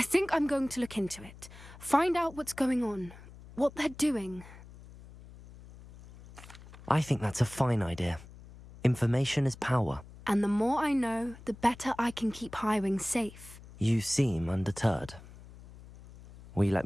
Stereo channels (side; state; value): left; noise; hum, 19 dB below the sound